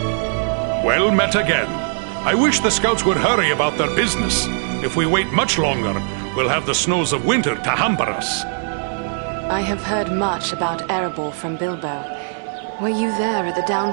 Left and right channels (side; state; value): left; silent; digital silence